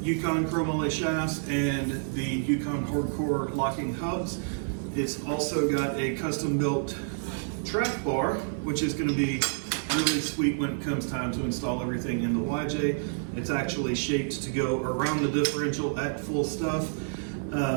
Yukon chromoly shafts, and the Yukon hardcore locking hubs. It's also got a custom built track bar, which is going to be really sweet when it comes time to install everything in the YJ. It's actually shaped to go around the differential at full stuff.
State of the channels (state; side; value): silent; left; 59 dB below the other